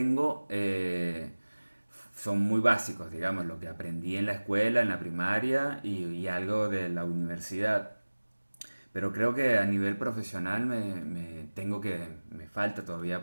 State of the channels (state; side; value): inverted; both; correlation -1.00